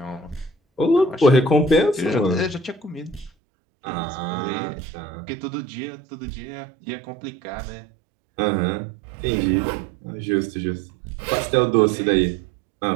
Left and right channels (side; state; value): left; drops out; at 3.3 s